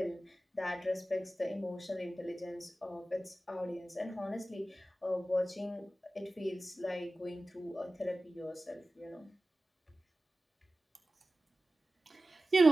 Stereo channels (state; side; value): normal; both; correlation 0.95